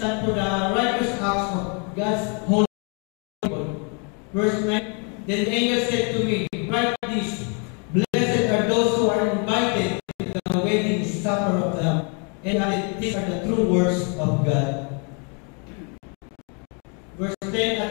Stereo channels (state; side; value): quieter; right; 37.3 dB